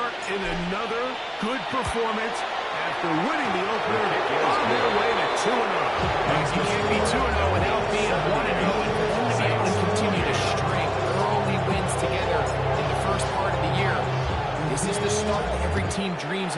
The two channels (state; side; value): identical; both; correlation 1.00